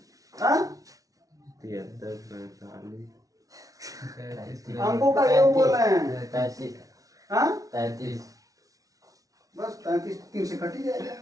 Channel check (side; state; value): left; late; 0.17 ms